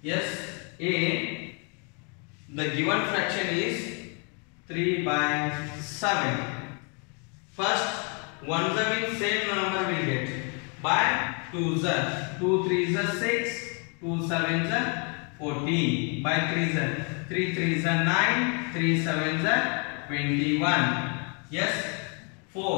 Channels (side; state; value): right; quieter; 37.1 dB